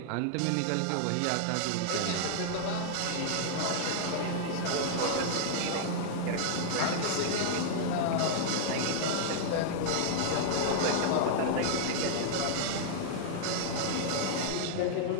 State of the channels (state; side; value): different; both; correlation -0.01